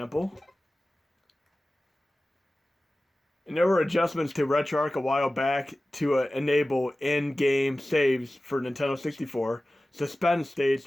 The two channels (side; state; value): both; normal; correlation 0.96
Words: And there were adjustments to RetroArch a while back to enable in-game saves for Nintendo 64. Suspend